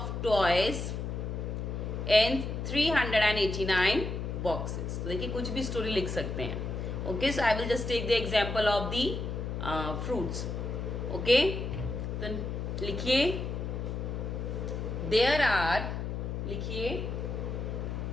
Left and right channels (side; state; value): left; noise; hum, 4 dB below the sound